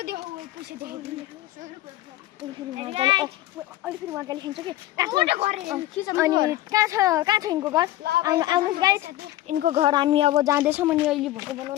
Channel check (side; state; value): right; quieter; 15.2 dB